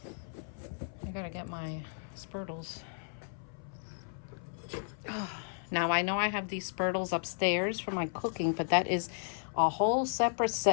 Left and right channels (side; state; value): right; silent; 55 dB below the other